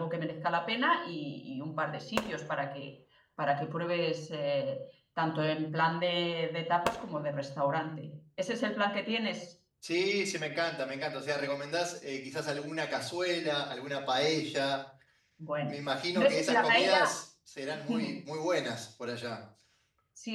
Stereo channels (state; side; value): identical; both; correlation 1.00